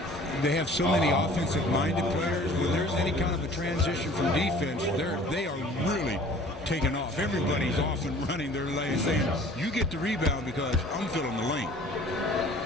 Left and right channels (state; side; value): normal; both; correlation 0.49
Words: they have so many offensive-minded players. When there's any kind of a transition from defense, they are really taking off. Everybody's off and running their lane, saying, you get the rebound because I'm filling the lane.